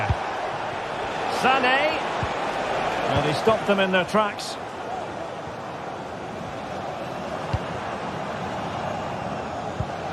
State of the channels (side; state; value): both; identical; correlation 1.00